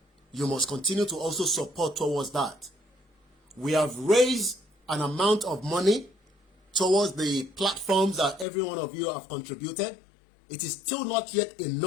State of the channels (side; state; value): right; drops out; at 8.5 s